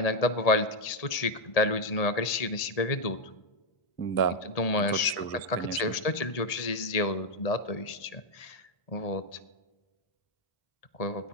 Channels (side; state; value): right; late; 1.7 ms